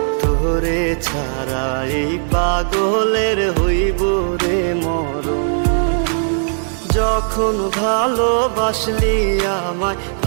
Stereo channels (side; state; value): left; silent; digital silence